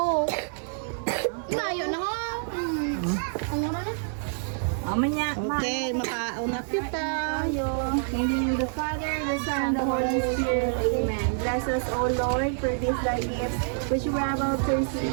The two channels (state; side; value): silent; left; 60 dB below the other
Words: Layo na ho. Ano na? Okay, makauna kita. In the name of the Father, the Son, and the Holy Spirit. Amen. Bless us, O Lord, for this thy gifts, which we have all